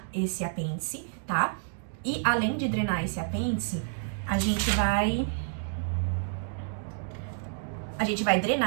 apêndice, tá? E além de drenar esse apêndice, a gente vai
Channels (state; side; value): silent; left; digital silence